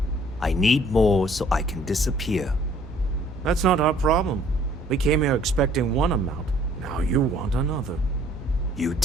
I need more so I can disappear. That's not our problem. We came here expecting one amount. Now you want another. You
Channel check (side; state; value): both; normal; correlation 0.58